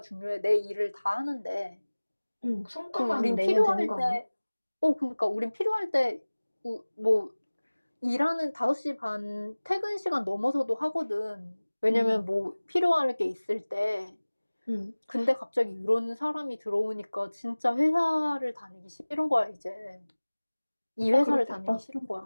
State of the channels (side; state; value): both; inverted; correlation -1.00